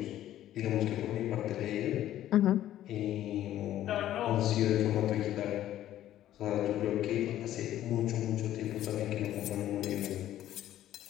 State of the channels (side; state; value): right; quieter; 12.7 dB